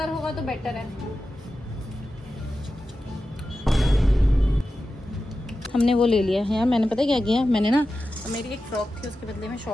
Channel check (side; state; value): both; normal; correlation 0.92